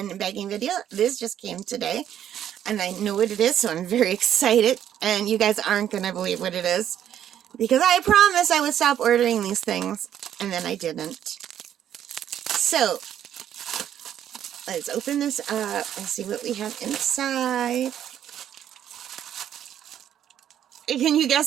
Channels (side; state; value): left; quieter; 10.3 dB